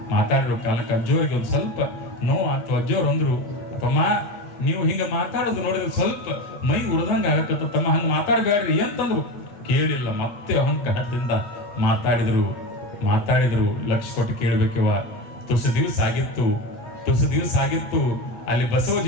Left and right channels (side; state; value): right; late; 9.0 ms